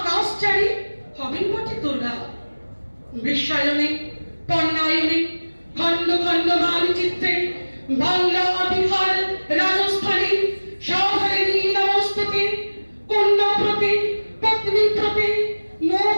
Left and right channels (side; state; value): both; inverted; correlation -1.00